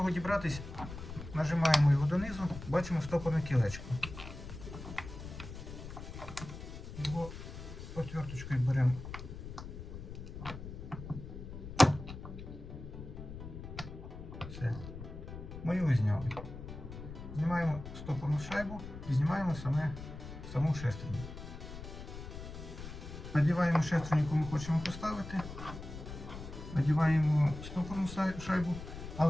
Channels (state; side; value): noise; left; rumble, 10 dB below the sound